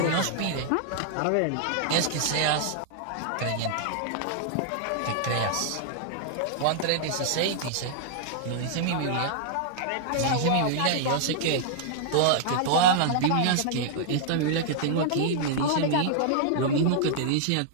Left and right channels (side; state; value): both; different; correlation -0.01